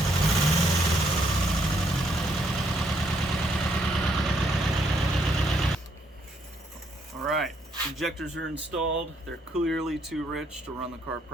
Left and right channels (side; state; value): both; normal; correlation 0.72